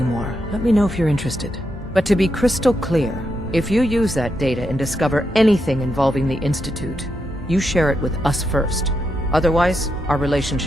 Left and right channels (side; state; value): both; normal; correlation 0.83